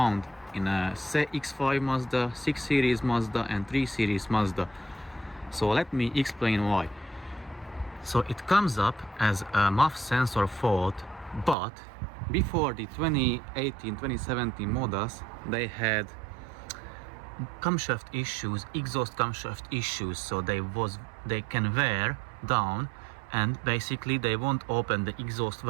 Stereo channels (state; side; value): drops out; left; at 11.6 s